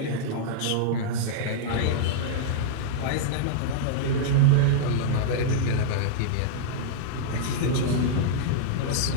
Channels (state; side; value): different; both; correlation -0.02